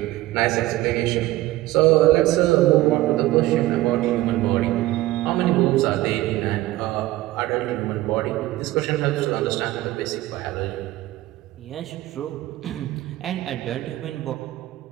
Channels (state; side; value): quieter; left; 16.9 dB